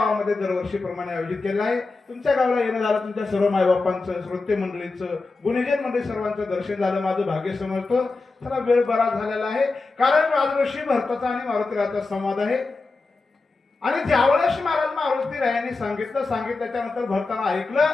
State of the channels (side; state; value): right; quieter; 3.7 dB